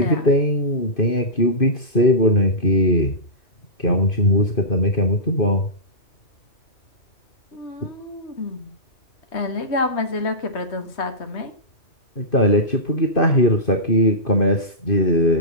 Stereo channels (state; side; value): late; right; 2.5 ms